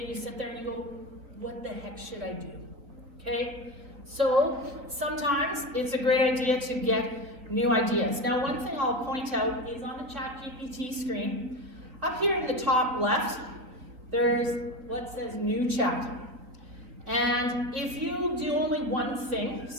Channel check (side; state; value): left; late; 3.7 ms